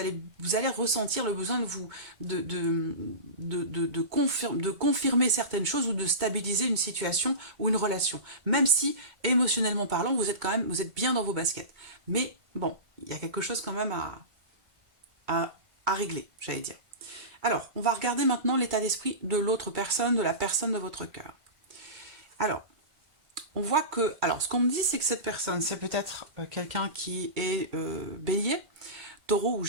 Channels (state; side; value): late; left; 2.1 ms